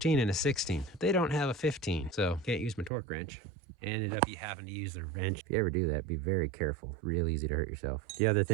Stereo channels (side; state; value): left; drops out; at 2.9 s